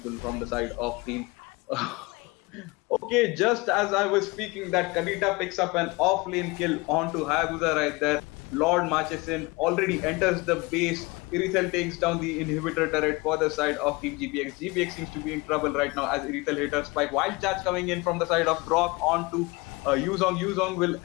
from the side of Team. Okay, just as I was speaking, that Kadita picks up an off-lane kill onto Hayabusa right there. Lord marches in, already enters the base. Irithel takes down the inhibitor turret for the side of Team GPX. GPX seems to be in trouble right now as Irithel hit her spike. Wild charge coming in from the side of Brock onto Yuzong. Yuzong will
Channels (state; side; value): quieter; right; 24.7 dB